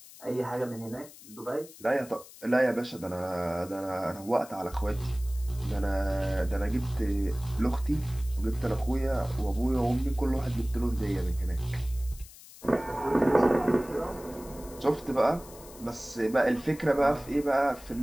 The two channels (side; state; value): left; noise; hiss, 19 dB below the sound